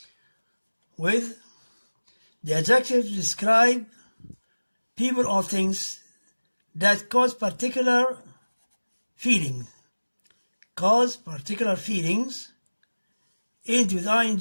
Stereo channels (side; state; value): both; inverted; correlation -1.00